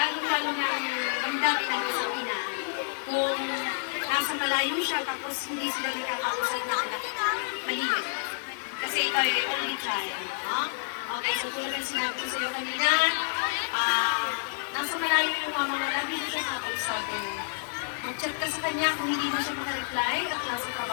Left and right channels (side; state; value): right; silent; digital silence